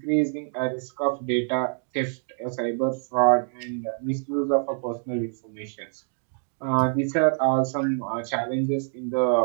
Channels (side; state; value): left; silent; 61 dB below the other